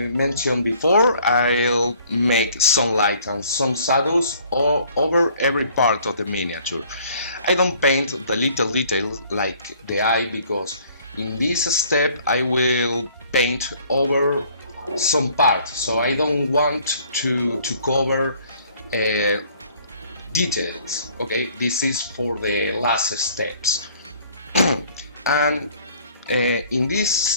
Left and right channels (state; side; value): inverted; both; correlation -0.57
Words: mentioned before, I'll make some light and some shadows over every part of the miniature. I don't paint the little details like the eye, because in this step I will paint over some part, so I don't want to cover details. Okay, this is for the last steps. And in this